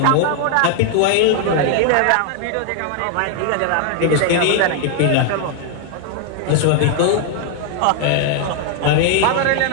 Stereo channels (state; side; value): different; both; correlation 0.00